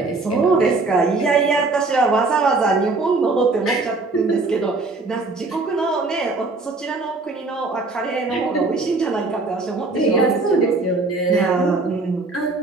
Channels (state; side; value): quieter; left; 3.5 dB